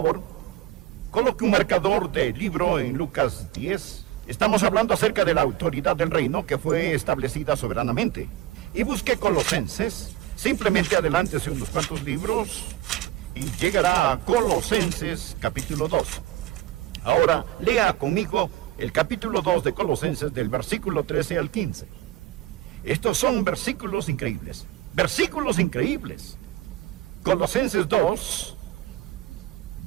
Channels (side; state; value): left; quieter; 14.1 dB